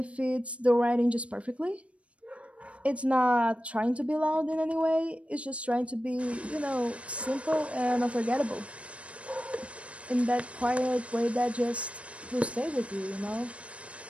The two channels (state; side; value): late; left; 0.062 ms